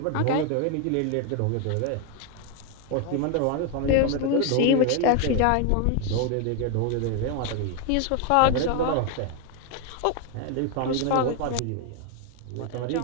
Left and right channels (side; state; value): both; different; correlation 0.01